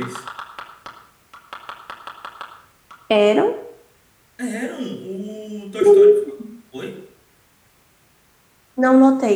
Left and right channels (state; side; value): identical; both; correlation 1.00